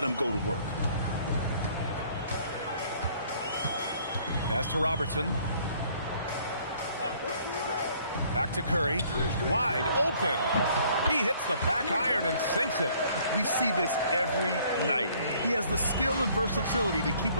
him go to work. Pass to Robertson. Back to Curry. Wide open. He hits the back iron and sinks it. We see this every night. He has the skill and versatility to keep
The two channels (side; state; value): both; inverted; correlation -0.60